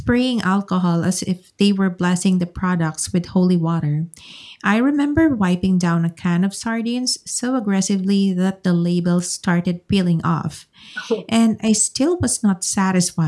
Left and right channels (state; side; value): identical; both; correlation 1.00